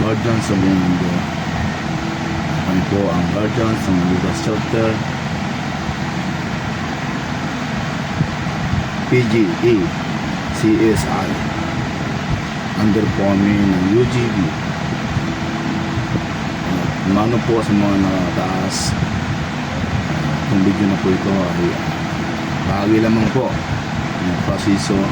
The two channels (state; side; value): identical; both; correlation 1.00